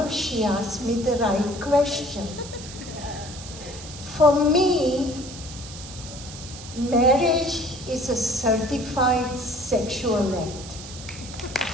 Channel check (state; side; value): noise; right; hiss, 13 dB below the sound